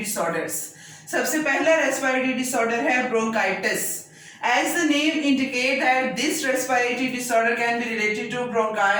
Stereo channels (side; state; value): both; identical; correlation 1.00